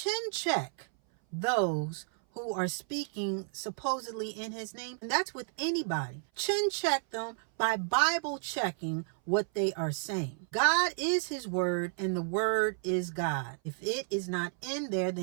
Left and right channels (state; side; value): silent; left; 56 dB below the other